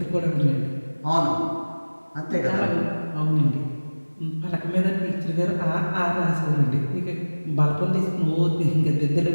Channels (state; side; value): inverted; both; correlation -1.00